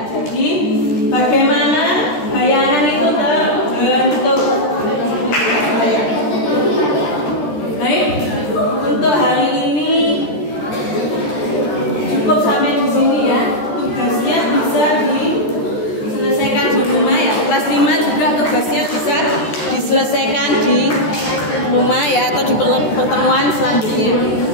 Jadi bagaimana bayangan itu terbentuk? Baik, untuk hari ini cukup sampai di sini ya. Tugasnya bisa diselesaikan di rumah ya. Kelas 5 juga tugasnya bisa diselesaikan di rumah ya, atau di pertemuan selanjutnya.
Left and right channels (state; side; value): late; right; 13 ms